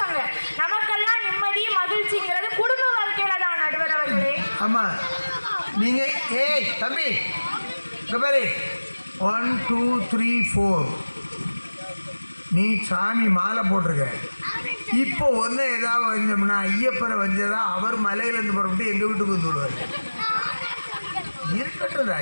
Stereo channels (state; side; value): inverted; both; correlation -1.00